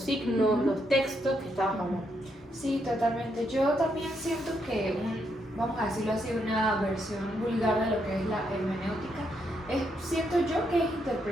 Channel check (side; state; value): both; normal; correlation 0.78